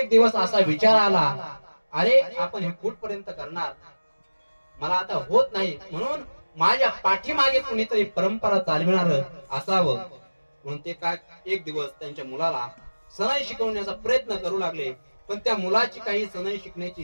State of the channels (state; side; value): inverted; both; correlation -1.00